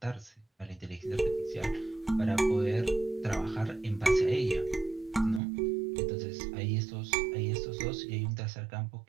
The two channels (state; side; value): drops out; left; at 5.4 s